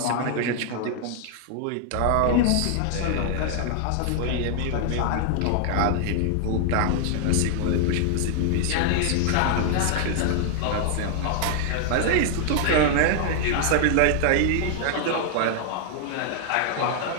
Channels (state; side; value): different; both; correlation 0.00